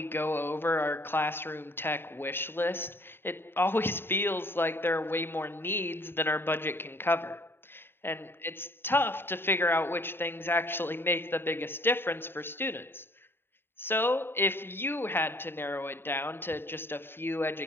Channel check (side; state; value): right; late; 0.11 ms